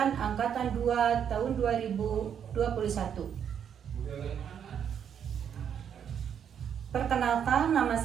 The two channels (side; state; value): left; quieter; 8.4 dB